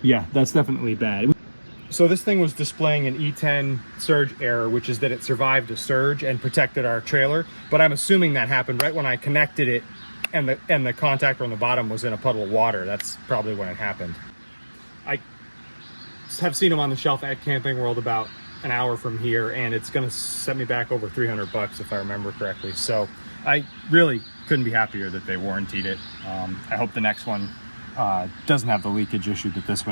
Yeah, that's definitely bad. So this thing was displaying an E10 surge error, which is that it survived a surge and protected our trailer. But I'm assuming that happened right when I connected it and the contactor on the bottom was in a puddle of water. That's probably when it happened. I have seen them on the shelf at Camping World about an hour from here, and it's gonna set me back over $300 if I remember correctly. So I really couldn't be happier that they warrantied it. I hope the next one doesn't have the leakage issue that this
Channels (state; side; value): inverted; both; correlation -1.00